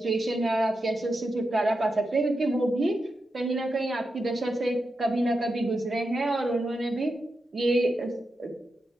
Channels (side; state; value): both; normal; correlation 0.88